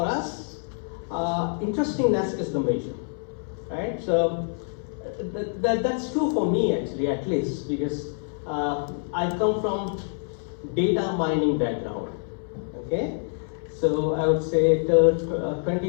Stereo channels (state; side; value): silent; right; 61 dB below the other